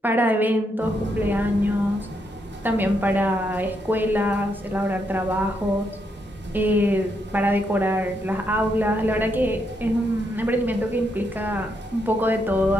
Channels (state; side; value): normal; both; correlation 0.78